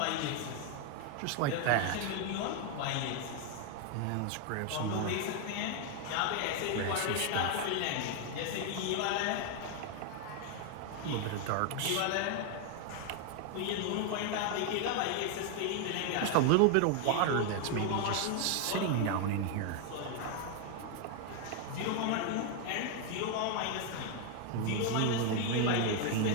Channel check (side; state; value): both; different; correlation 0.01